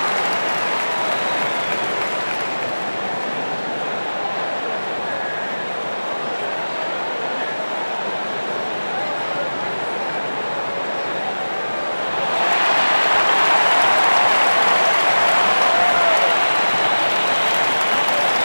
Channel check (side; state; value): both; inverted; correlation -1.00